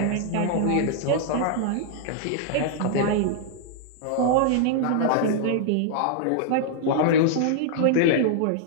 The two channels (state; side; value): different; both; correlation -0.01